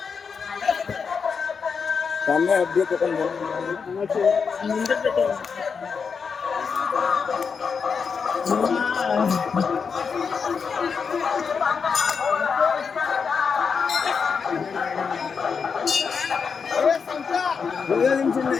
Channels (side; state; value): right; quieter; 5.8 dB